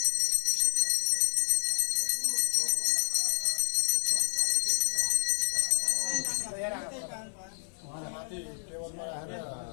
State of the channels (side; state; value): right; silent; 58 dB below the other